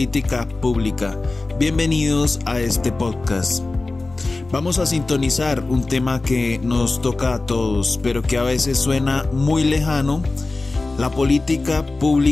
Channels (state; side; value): quieter; right; 3.3 dB